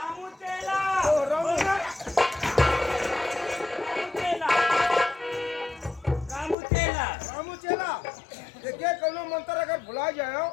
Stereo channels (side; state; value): right; drops out; at 6.6 s